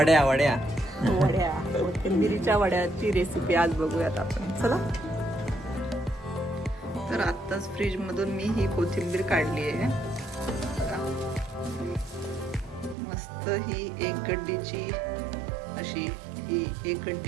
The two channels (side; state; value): left; drops out; at 13.0 s